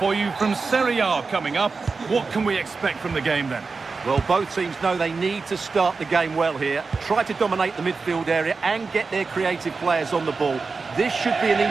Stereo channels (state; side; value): quieter; left; 4.4 dB